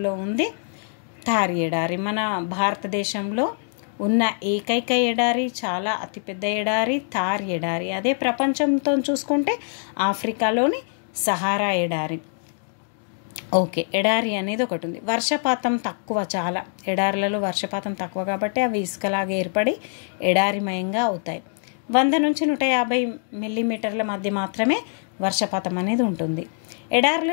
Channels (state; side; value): silent; right; digital silence